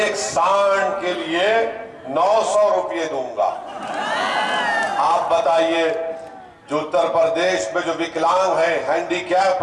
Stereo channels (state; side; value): identical; both; correlation 1.00